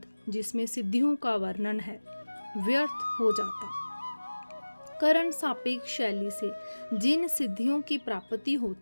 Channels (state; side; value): inverted; both; correlation -1.00